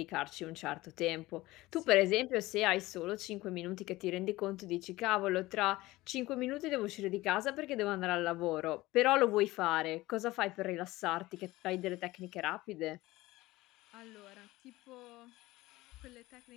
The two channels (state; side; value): quieter; right; 18.8 dB